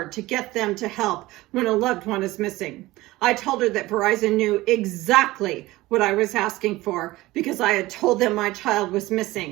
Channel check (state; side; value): quieter; left; 18.7 dB